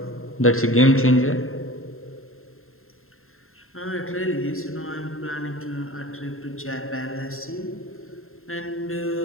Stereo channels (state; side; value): late; right; 0.61 ms